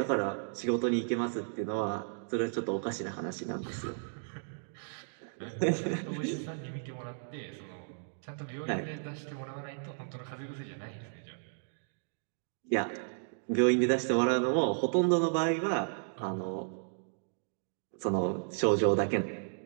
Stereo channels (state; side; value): silent; left; digital silence